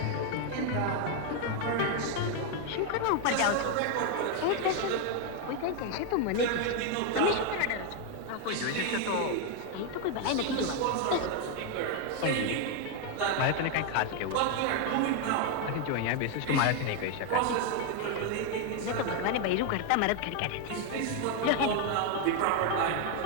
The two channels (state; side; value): different; both; correlation 0.01